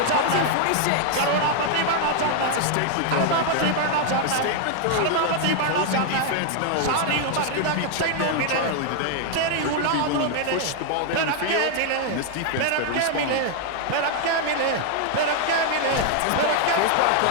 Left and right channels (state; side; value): different; both; correlation 0.00